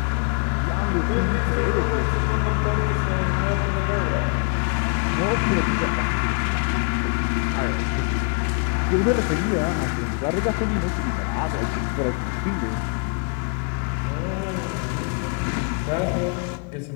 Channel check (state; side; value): quieter; right; 36.8 dB